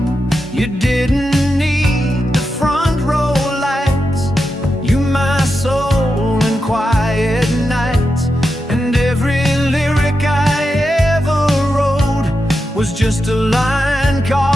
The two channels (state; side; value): normal; both; correlation 0.88